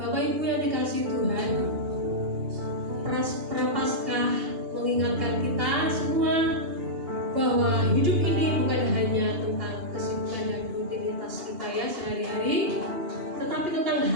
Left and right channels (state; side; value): late; left; 2.8 ms